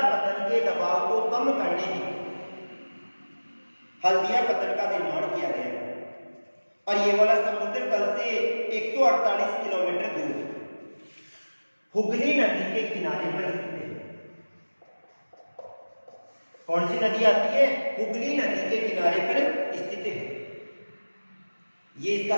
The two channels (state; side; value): inverted; both; correlation -1.00